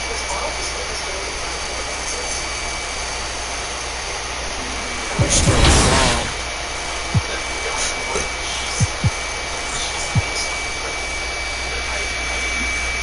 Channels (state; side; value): identical; both; correlation 1.00